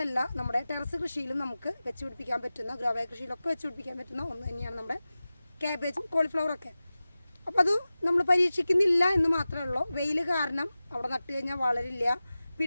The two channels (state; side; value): inverted; both; correlation -0.96